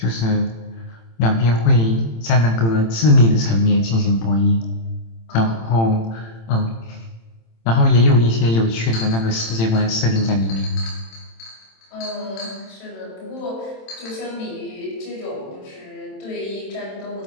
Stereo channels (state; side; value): late; right; 27 ms